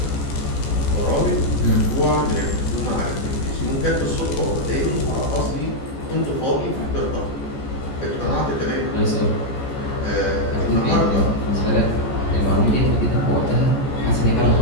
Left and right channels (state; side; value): late; right; 14 ms